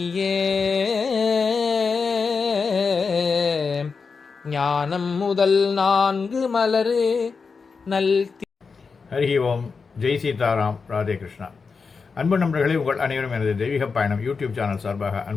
ஞானம் முதல் 4 மலரு நல். ஹரி ஓம். ஜெய் சீதாராம். ராதே கிருஷ்ணா. அன்பு நண்பர்களே, உங்கள் அனைவரும் எனது தெய்வீக பயணம் யூடியூப் சேனல் சார்பாக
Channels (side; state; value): right; quieter; 5.0 dB